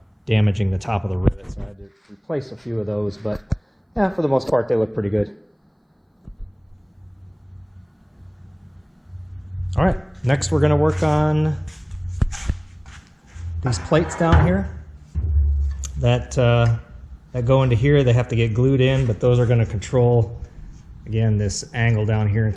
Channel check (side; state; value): both; identical; correlation 1.00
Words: damaging the top of the rivet, so I had to replace a few of those, but yeah, for the most part they look pretty good. All right, next we're going to work on these plates down here that go into here. They have to get glued in, but those are going to control, again, this angle down here and